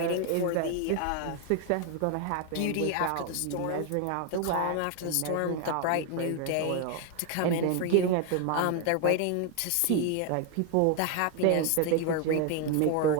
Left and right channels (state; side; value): different; both; correlation 0.01